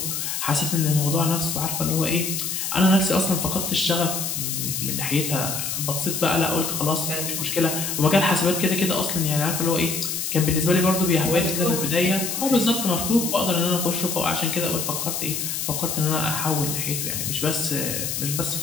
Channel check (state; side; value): noise; left; hiss, 3 dB below the sound